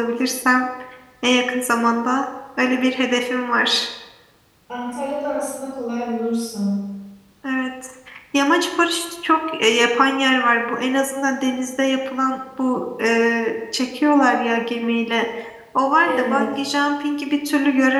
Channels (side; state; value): both; identical; correlation 1.00